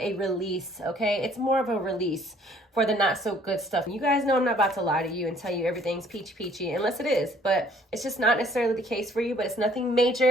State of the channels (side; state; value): both; normal; correlation 0.60